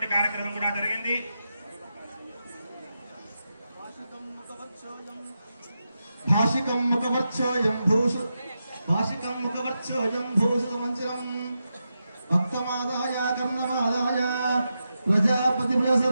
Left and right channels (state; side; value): inverted; both; correlation -0.88